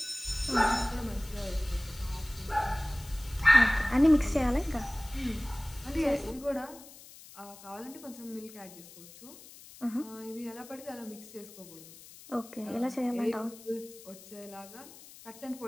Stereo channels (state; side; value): noise; left; hiss, 19 dB below the sound